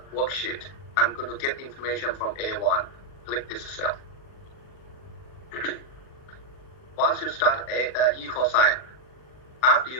worksheet. I'm going to get information from A1. Click this cell. Once you start equal sign, after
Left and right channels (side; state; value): right; late; 40 ms